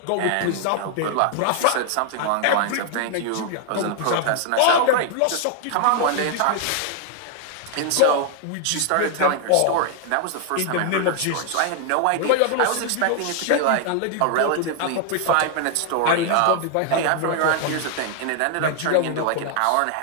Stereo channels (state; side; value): different; both; correlation 0.00